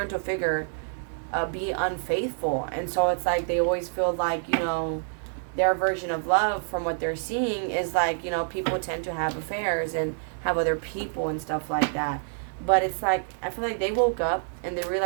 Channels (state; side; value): silent; left; 60 dB below the other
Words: figure be unfaithful. And so it's like they always feel like, you know, their version of love from what they're seeing is like, you know, people tend to have affairs and have other people and stuff like that. But it's like, I feel like they woke up and they